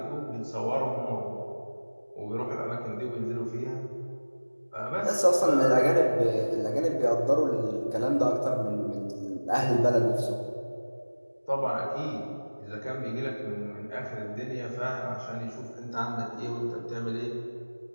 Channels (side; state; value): both; inverted; correlation -1.00